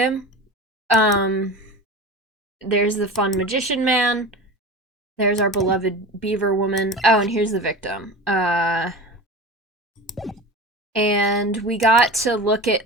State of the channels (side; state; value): both; normal; correlation 0.31